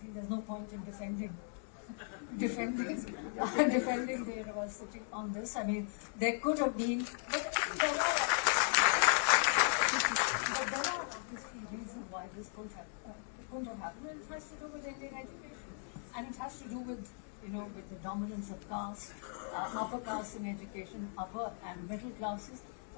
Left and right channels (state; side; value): silent; right; 53 dB below the other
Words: there's no point in defending the university on this. I mean, there could have been, but there are obviously reasons why this couldn't have happened, and it has to do with Indian education, and it has to do with with the dominance of caste, upper caste in education, upper and middle classes.